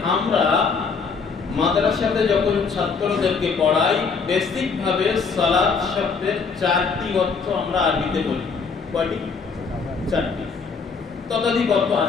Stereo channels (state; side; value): quieter; right; 5.2 dB